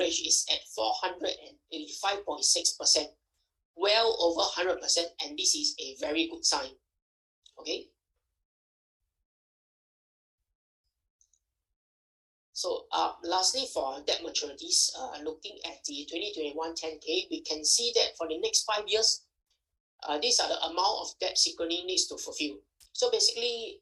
is at 485.6%, well over 100%, and this is a very good sign. Okay. So lastly, for debt maturities, looking at the 2021 10K, we can see that for the next 5 years, these are the amount of debt Synchrony needs to fulfill. So basically,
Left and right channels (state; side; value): identical; both; correlation 1.00